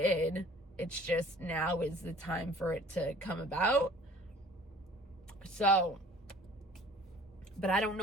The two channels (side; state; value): both; normal; correlation 0.50